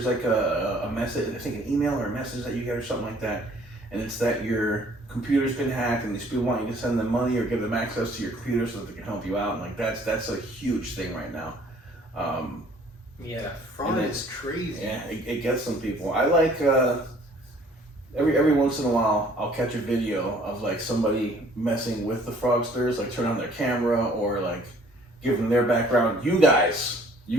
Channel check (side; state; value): both; normal; correlation 0.56